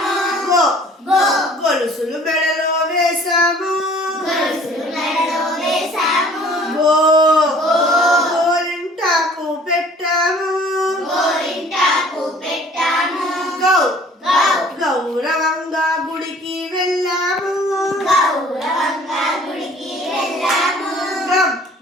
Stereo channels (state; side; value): normal; both; correlation 0.52